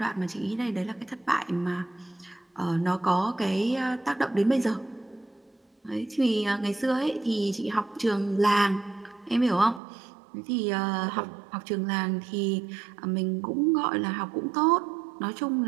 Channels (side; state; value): left; drops out; at 9.8 s